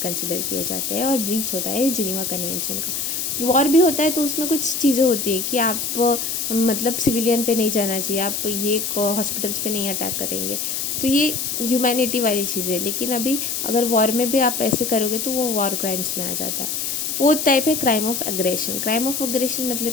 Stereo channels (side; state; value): left; noise; hiss, 2 dB below the sound